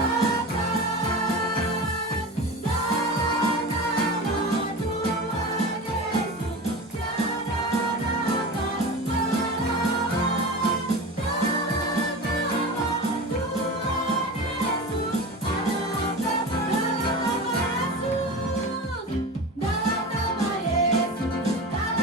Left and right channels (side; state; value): both; normal; correlation 0.29